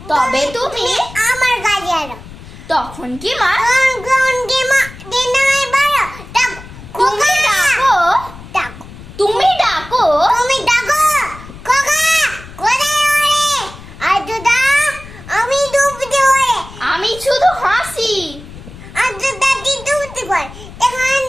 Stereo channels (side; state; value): left; noise; rumble, 17 dB below the sound